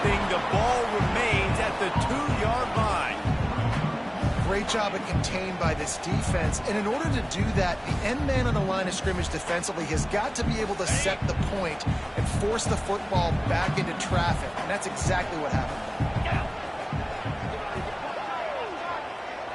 The ball remains at the 2-yard line. Great job at contained by this defense. And in order to do that, the end man on the line of scrimmage defensively has got to be able to set the point and force the football back into traffic. And that's exactly what happened.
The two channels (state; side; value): identical; both; correlation 1.00